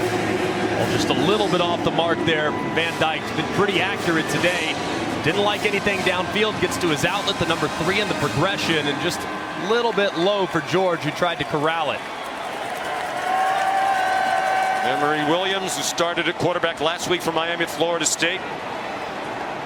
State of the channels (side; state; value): both; identical; correlation 1.00